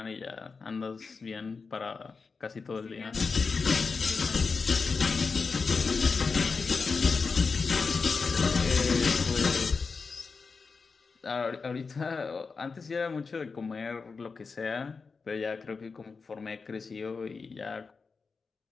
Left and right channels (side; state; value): right; quieter; 4.7 dB